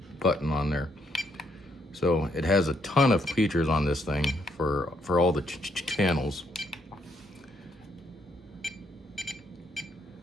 button on there. So it has a ton of features on this thing for all the channels.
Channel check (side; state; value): both; normal; correlation 0.73